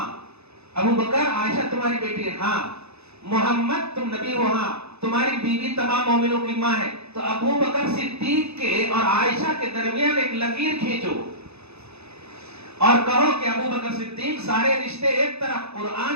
ابو بکر عائشہ تمہاری بیٹی ہے؟ ہاں۔ محمد تم نبی ہو؟ ہاں۔ تمہاری بیوی تمام مومنوں کی ماں ہے۔ تو ابو بکر صدیق کے اور عائشہ کے درمیان ایک لکیر کھینچو اور کہو کہ ابو بکر صدیق سارے رشتے ایک طرف،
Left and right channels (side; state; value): left; late; 0.79 ms